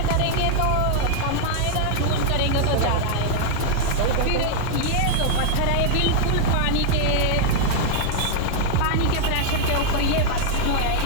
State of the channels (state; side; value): different; both; correlation -0.01